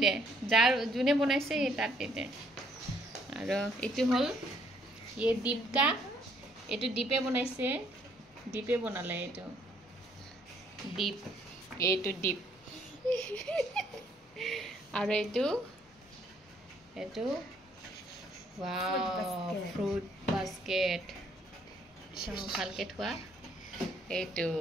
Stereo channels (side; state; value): both; normal; correlation 0.66